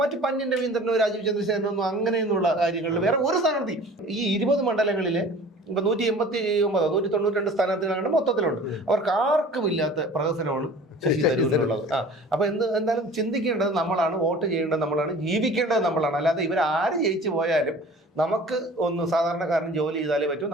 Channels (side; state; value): both; normal; correlation 0.44